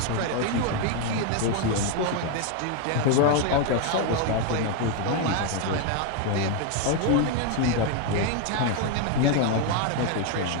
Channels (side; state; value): both; different; correlation 0.01